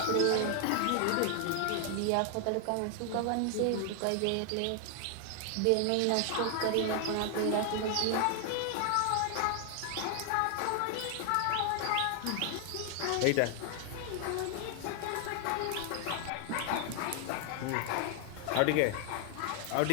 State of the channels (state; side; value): different; both; correlation 0.00